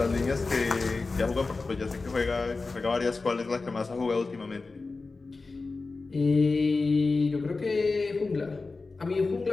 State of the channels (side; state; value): right; quieter; 3.8 dB